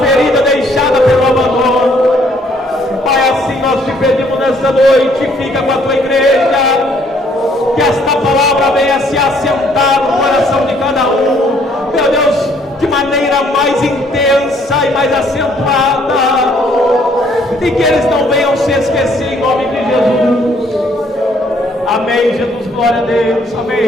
ferida deixada pelo abandono. Pai, assim nós te pedimos nesta noite, fica com a tua igreja, que esta palavra venha se assentar no coração de cada um. Meu Deus, de maneira mais intensa e mais acentuada, e que eles não venham se esquecer, em nome de Jesus. Amém, Jesus, glória a Deus. Amém,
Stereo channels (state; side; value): normal; both; correlation 0.64